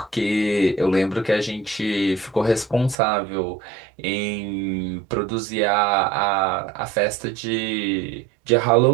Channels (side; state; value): left; drops out; at 3.0 s